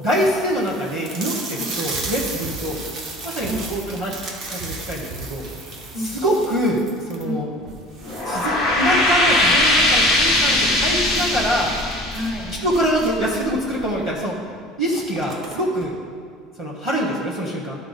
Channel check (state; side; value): normal; both; correlation 0.43